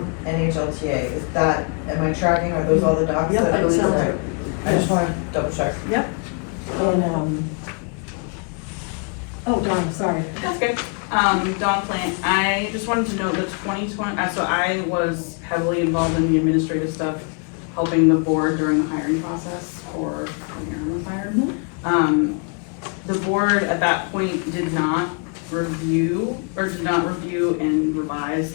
NHLTA. Is that, am I tracking, are those all the docs? Yep, that- that sounds okay. right. I just want to double check. Yep. And, Oh, Donna, sorry. That's good. Dawn Plant, I just wanted to know the 2020, so I was heavily involved in the administrative stuff, helping the board during the hiring process for when Aaron was hired. The board at that point did not review and revise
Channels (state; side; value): quieter; right; 38.2 dB